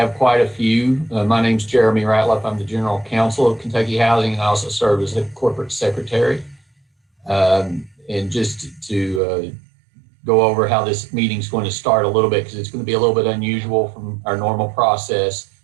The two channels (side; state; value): left; drops out; at 9.2 s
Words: quite a few, my name's Jeremy Ratliff. I'm the General Counsel of Kentucky Housing, and I also serve as the Corporate Secretary. And just to go over how this meeting's going to start a little bit, because it's going to be a little bit unusual from our normal process.